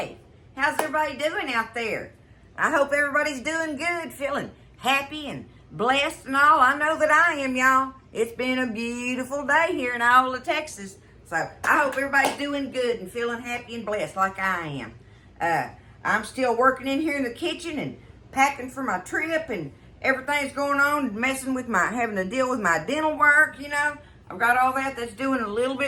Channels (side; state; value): both; identical; correlation 1.00